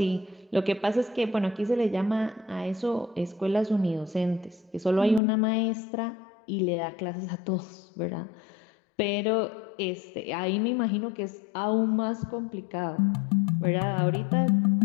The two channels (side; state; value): right; drops out; at 5.2 s